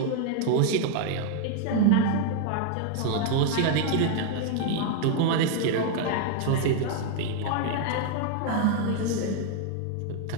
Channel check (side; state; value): both; different; correlation 0.01